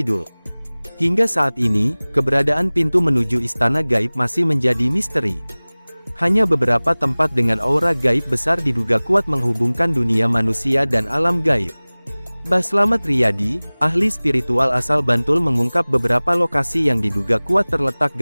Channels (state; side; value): inverted; both; correlation -1.00